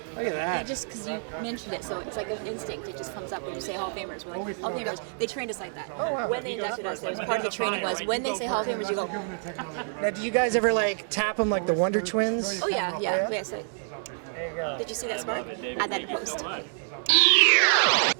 Look at that. Yeah, just because you mentioned it, so it's like an instinct. It just comes up when you say Hall of Famers. We're like, Hall of Famers. They trained us like that. Oh, wow. When they inducted us, that was part of the training was when they say Hall of Famers, you go. Now, do you guys ever like tap them like the Wonder Twins? Oh yeah. Yeah? So, There you go. did you see that spark? Add that in post.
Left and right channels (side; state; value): left; silent; 56 dB below the other